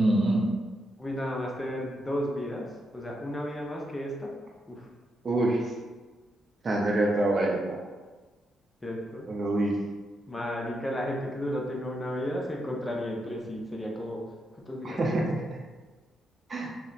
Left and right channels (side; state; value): both; normal; correlation 0.83